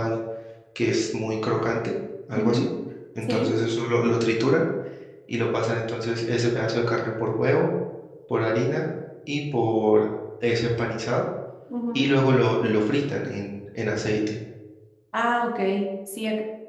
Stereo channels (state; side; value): identical; both; correlation 1.00